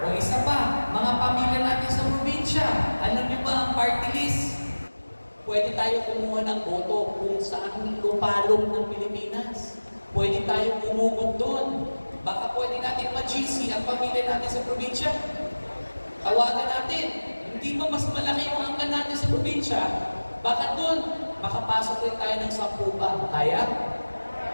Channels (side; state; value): both; inverted; correlation -1.00